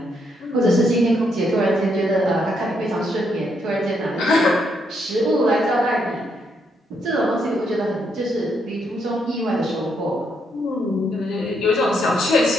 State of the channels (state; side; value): normal; both; correlation 0.76